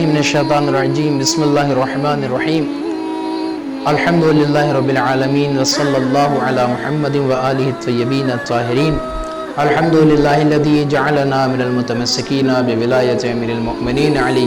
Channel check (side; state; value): both; identical; correlation 1.00